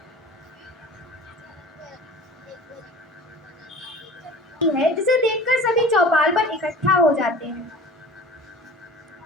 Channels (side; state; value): both; normal; correlation 0.41